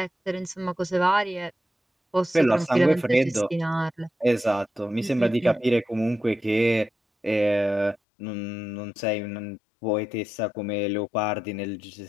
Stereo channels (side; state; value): right; drops out; at 8.0 s